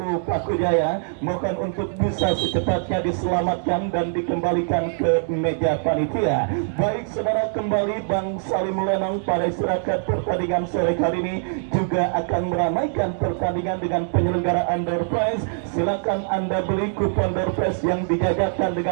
Pakujaya, mohon untuk bisa secepatnya diselamatkan dan dikembalikan ke meja panitia. Baik saudara, kembali Bang Salim Lenong pada istirahat pertandingan sore kali ini juga akan meramaikan pertandingan dengan penyelenggaraan door prize. Silakan Anda beli kupon door prize yang dijajakan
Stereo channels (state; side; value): silent; left; digital silence